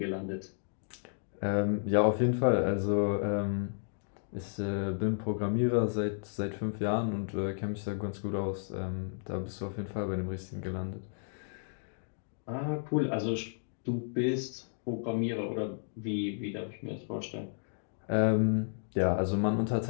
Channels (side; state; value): right; silent; digital silence